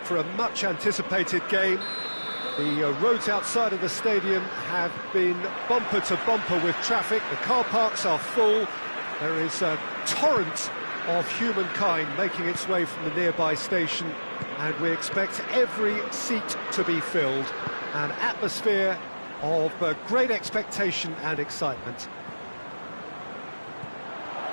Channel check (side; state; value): both; inverted; correlation -1.00